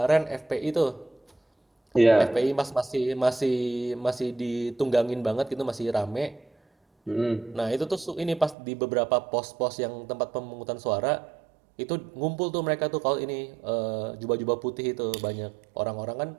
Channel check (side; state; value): left; drops out; at 8.6 s